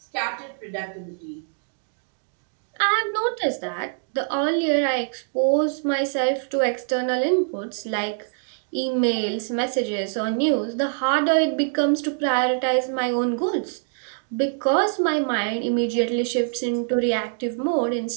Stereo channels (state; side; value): silent; left; digital silence